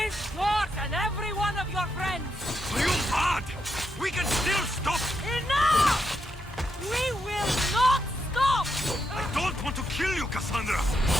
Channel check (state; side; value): normal; both; correlation 0.81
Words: yours, and every one of your friends! Are you mad? We can still stop! Enough! We will not stop! I don't want to kill you, Kassandra,